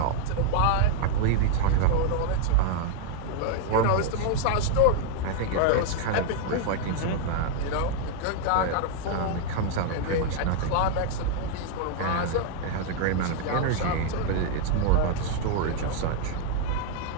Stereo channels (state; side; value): different; both; correlation 0.00